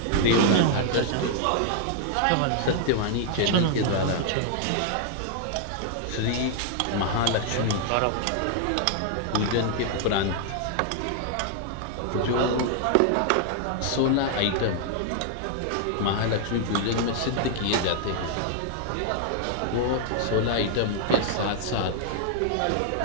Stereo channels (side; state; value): both; different; correlation 0.00